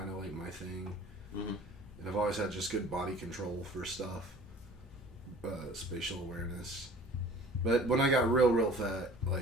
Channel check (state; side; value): normal; both; correlation 0.47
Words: of, like, my thing. Mm-hmm. And I've always had just good body control for stuff. Spatial awareness. But when I got real fat,